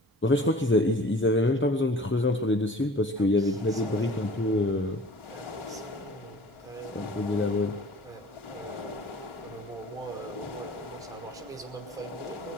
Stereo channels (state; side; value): normal; both; correlation 0.46